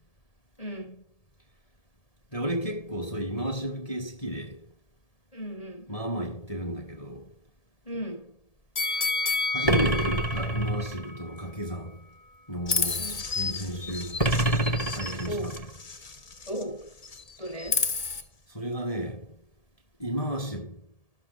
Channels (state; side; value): late; right; 1.7 ms